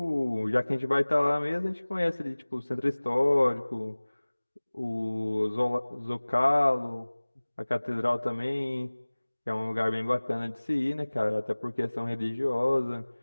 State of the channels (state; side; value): inverted; both; correlation -1.00